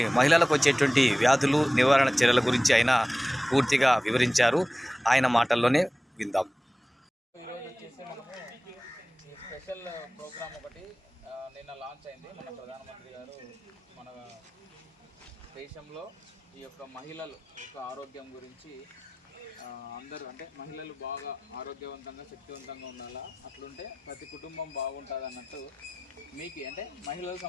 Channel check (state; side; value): normal; both; correlation 0.96